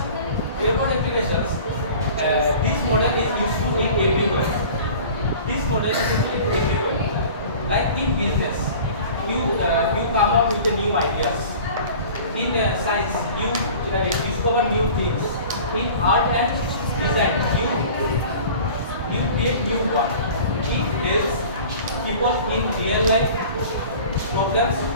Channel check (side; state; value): both; inverted; correlation -0.43